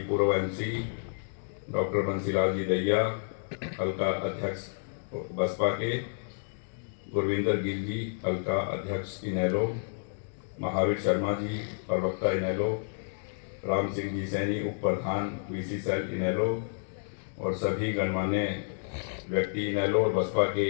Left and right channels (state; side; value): silent; right; digital silence